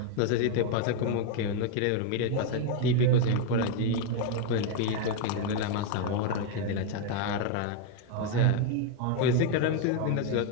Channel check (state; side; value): different; both; correlation 0.01